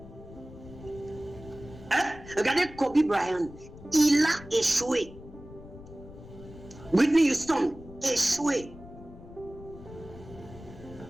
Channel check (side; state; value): left; noise; rumble, 17 dB below the sound